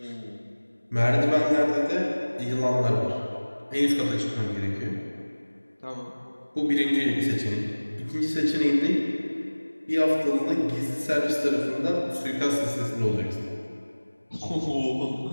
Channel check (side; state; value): both; inverted; correlation -1.00